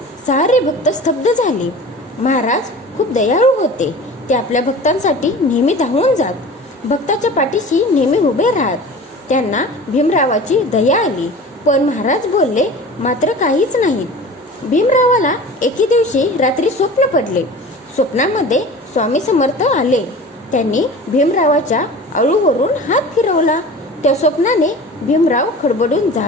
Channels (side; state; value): both; normal; correlation 0.38